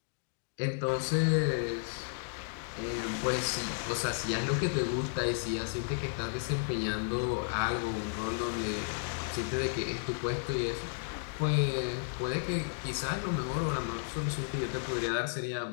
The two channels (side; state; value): right; silent; digital silence